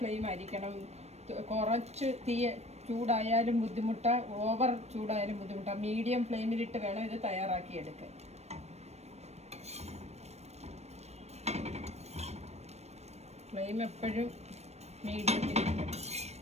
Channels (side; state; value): left; late; 0.31 ms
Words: ഫ്ലെയിം ആയിരിക്കണം. കുറച്ച് തീ ചൂടായാലും ബുദ്ധിമുട്ടാ, ഓവർ ചൂടായാലും ബുദ്ധിമുട്ടാ. മീഡിയം ഫ്ലെയിമിലിട്ട് വേണം ഇത് തയ്യാറാക്കിയെടുക്കാൻ. ഫ്ലെയിം എപ്പോഴും മീഡിയത്തിലിരിക്കണം.